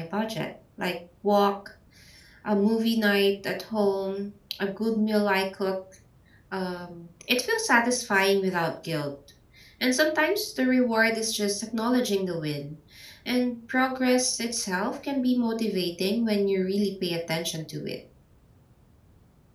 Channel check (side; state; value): both; identical; correlation 1.00